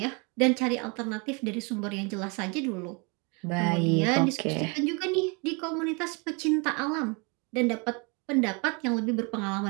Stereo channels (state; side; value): quieter; left; 31.5 dB